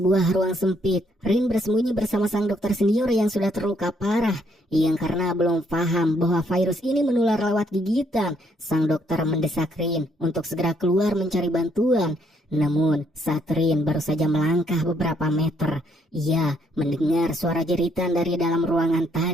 ruang sempit, Rin bersembunyi bersama sang dokter senior yang sudah terluka parah. Yang karena belum paham bahwa virus ini menular lewat gigitan, sang dokter mendesak Rin untuk segera keluar mencari bantuan. Namun, saat Rin baru saja melangkah beberapa meter, ia mendengar suara jeritan dari dalam ruangan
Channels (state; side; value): normal; both; correlation 0.70